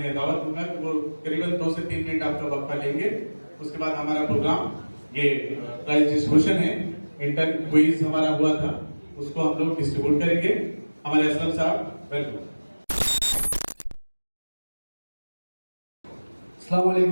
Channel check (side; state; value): both; inverted; correlation -1.00